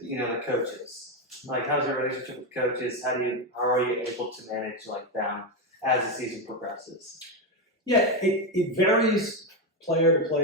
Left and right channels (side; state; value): both; normal; correlation 0.09